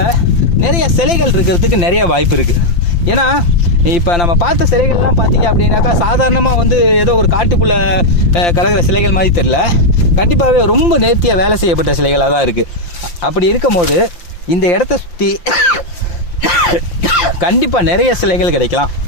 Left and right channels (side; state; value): right; late; 5.8 ms